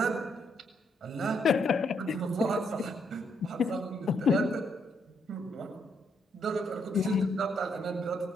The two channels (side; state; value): both; normal; correlation 0.75